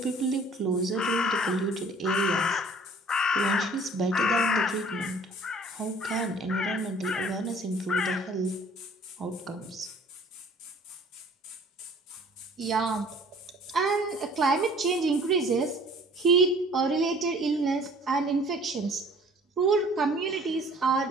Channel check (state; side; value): normal; both; correlation 0.52